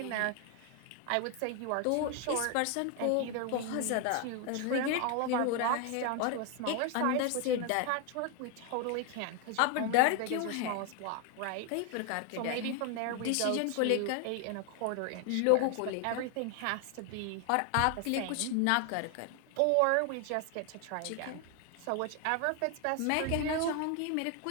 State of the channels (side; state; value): both; different; correlation 0.01